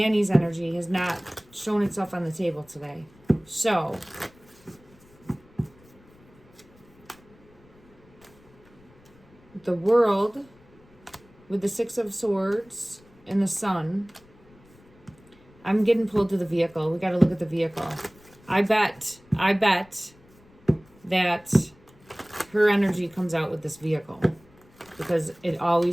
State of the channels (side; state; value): left; noise; rumble, 27 dB below the sound